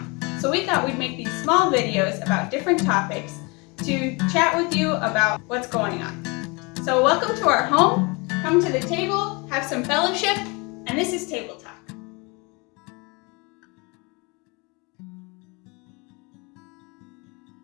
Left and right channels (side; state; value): right; quieter; 28.6 dB